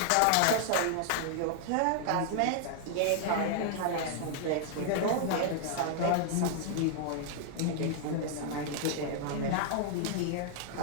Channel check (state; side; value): different; both; correlation 0.00